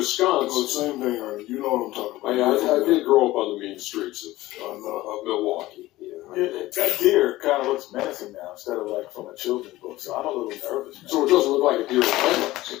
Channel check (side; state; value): right; quieter; 17.4 dB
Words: Oh, same thing, Ernie. You know what I'm talking about. I did grow up on the mean streets of Milwaukee. That deer kind of looks menacing now instead of like from a children's book, so I'm a little nervous now. So it doesn't look like a deer in the headlights.